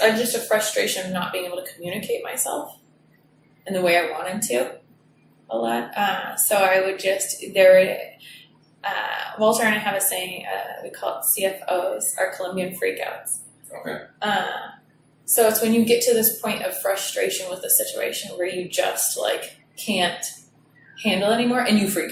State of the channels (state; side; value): identical; both; correlation 1.00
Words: a frustration of not being able to communicate myself in the way I wanted to a lot. So I would just, Walter and I have a saying, we call it CFOs, our Colombian freakouts. Okay. So it's when you get to this point of frustration with the situation where you just like can't handle anymore and you freak